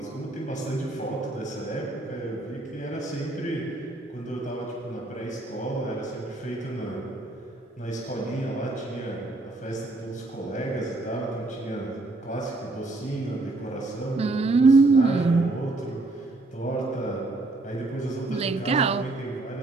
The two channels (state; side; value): quieter; left; 3.0 dB